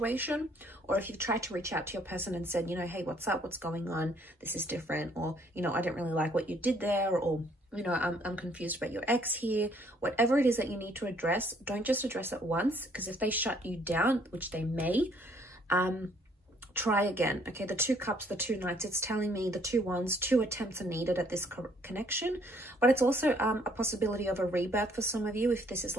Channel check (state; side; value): normal; both; correlation 0.64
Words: or if you've tried to reach out to your person and said, you know, hey, what's up, what's going on, this is different, or, you know, I didn't really like what you did there, or, you know, I'm confused about your ex here. Whatever it is that you need to address, don't just address it once, because if they shut you down, which they may, try again. Okay, the 2 cups, the 2 knights, it's telling me the 2 wands, 2 attempts are needed at this connection. But it's also a possibility of a rebirth for some of you, if this is